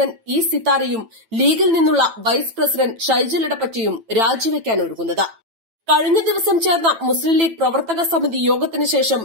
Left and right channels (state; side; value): late; left; 9.0 ms